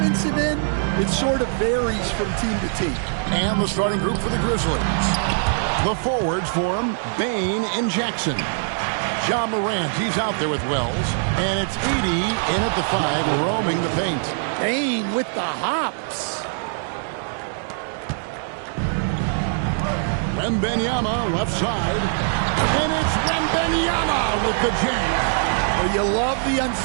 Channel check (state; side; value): silent; left; 64 dB below the other